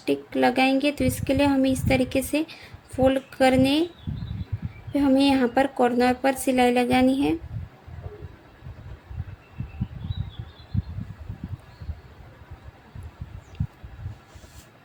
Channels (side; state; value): both; identical; correlation 1.00